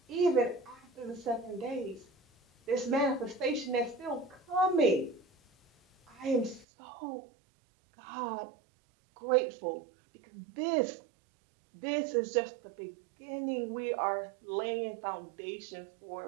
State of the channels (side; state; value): left; drops out; at 6.7 s